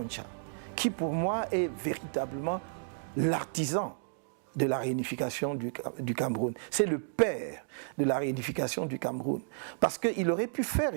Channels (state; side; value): silent; left; digital silence